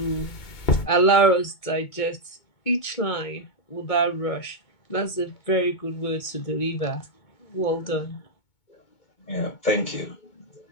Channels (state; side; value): late; right; 2.2 ms